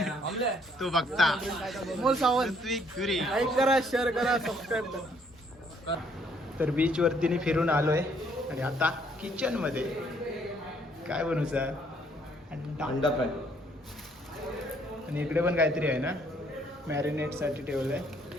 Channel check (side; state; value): both; normal; correlation 0.66